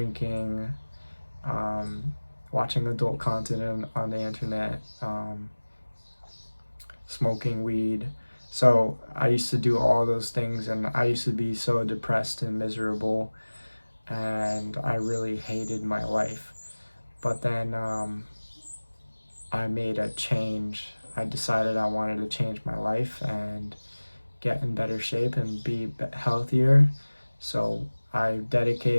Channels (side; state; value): both; inverted; correlation -1.00